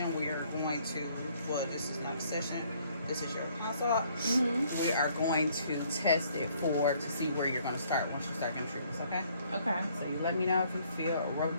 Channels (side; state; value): both; inverted; correlation -0.64